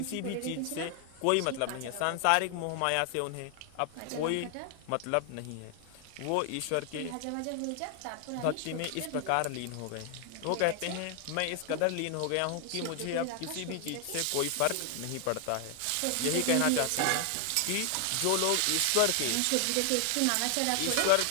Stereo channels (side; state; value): both; different; correlation 0.00